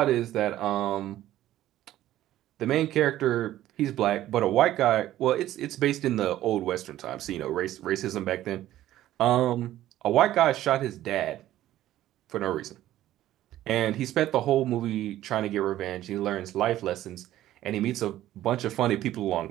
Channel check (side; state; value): left; quieter; 13.8 dB